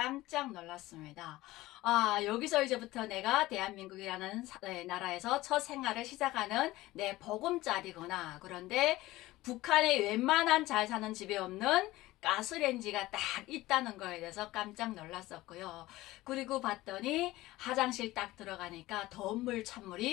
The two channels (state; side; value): quieter; right; 17.8 dB